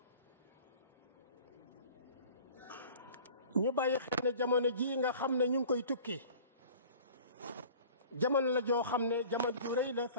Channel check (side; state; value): both; inverted; correlation -0.45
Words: ñu bàyyi xel ne jamono ji nga xam ne ñu ngi koy tukki jamono la joo xam ne jamono ju rëy la fa